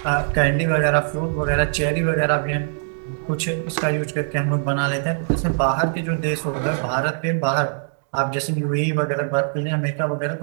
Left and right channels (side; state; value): left; silent; digital silence